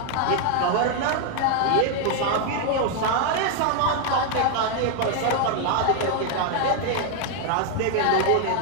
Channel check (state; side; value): different; both; correlation 0.00